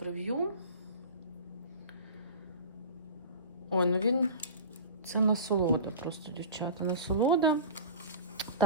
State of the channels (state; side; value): inverted; both; correlation -0.33